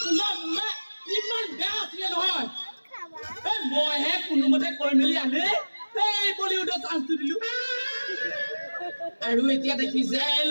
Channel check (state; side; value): inverted; both; correlation -1.00